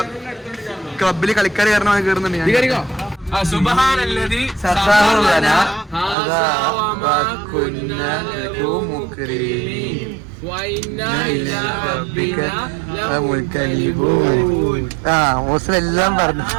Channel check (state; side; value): drops out; left; at 6.2 s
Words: ക്ലബില് കളിക്കാർ കാരണം കയറുന്നുണ്ട്. എല്ലാം പറഞ്ഞു.